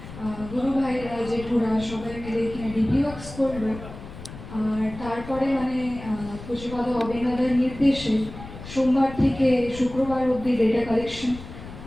গুরু ভাইরা, জেঠুরা সবাই মিলে এখানে ডিপিওএস করলো। আর তারপরে মানে পুজোপাদ অবিনাদের নির্দেশে সোমবার থেকে শুক্রবার অবধি ডেটা কালেকশন,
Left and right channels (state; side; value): noise; left; rumble, 13 dB below the sound